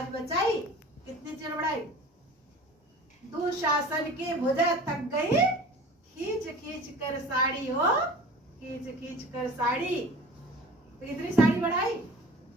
बचाई। कितनी चीर बढ़ाई? दुशासन के भुजा थक गई, खींच खींच कर साड़ी हो, खींच खींच कर साड़ी। तो इतनी साड़ी बढ़ाई।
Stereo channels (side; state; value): both; normal; correlation 0.41